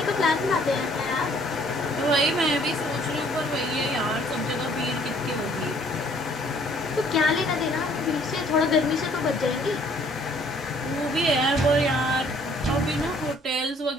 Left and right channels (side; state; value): both; normal; correlation 0.60